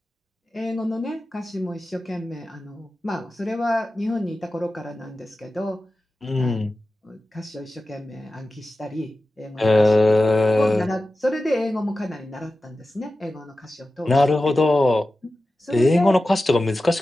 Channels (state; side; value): normal; both; correlation 0.94